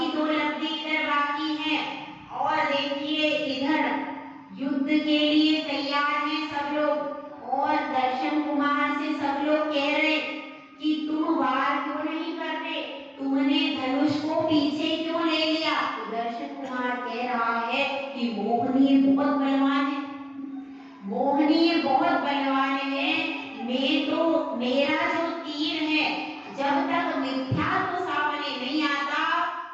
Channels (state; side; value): identical; both; correlation 1.00